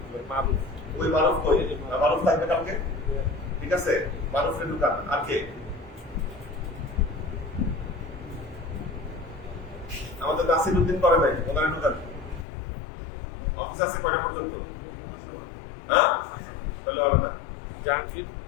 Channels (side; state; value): right; drops out; at 12.5 s